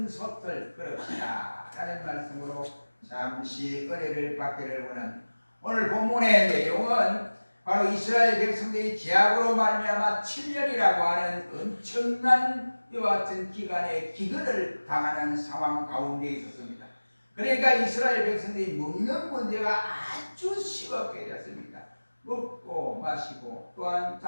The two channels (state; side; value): inverted; both; correlation -1.00